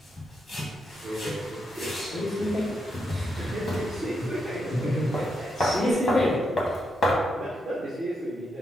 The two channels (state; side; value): normal; both; correlation 0.82